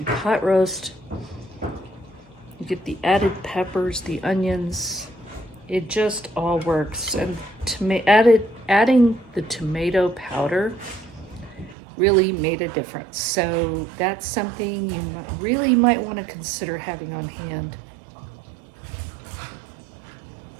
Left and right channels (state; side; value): drops out; left; at 11.8 s